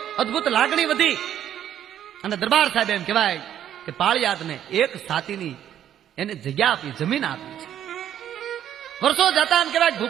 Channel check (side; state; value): left; quieter; 10.6 dB